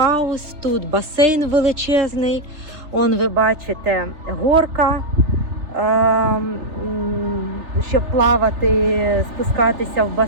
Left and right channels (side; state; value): left; late; 3.3 ms